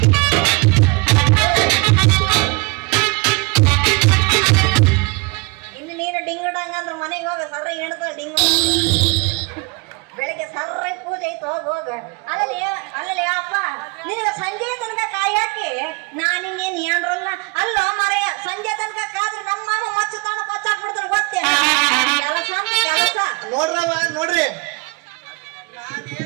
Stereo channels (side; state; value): left; quieter; 28.1 dB